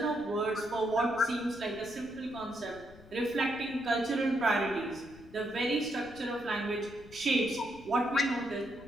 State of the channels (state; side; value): noise; left; rumble, 21 dB below the sound